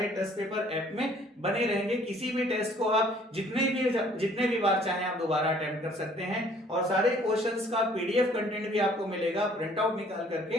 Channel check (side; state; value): both; normal; correlation 0.58